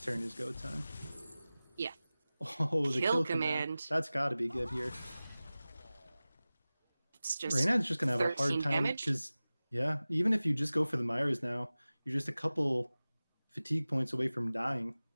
turn is go time. Yeah. Oh, the Kill command. That's got to be good here. It's just Reynad's just gonna have a hard 13 time damage. because even if you just go for the Myers now, you're just a couple fatigue points away from dying.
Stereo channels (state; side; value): inverted; both; correlation -0.97